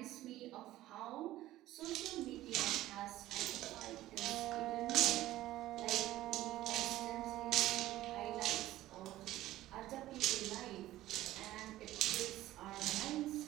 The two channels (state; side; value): quieter; left; 15.3 dB